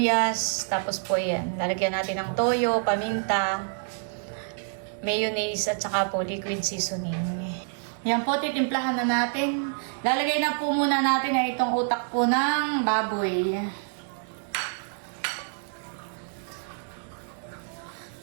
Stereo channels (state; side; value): silent; left; 60 dB below the other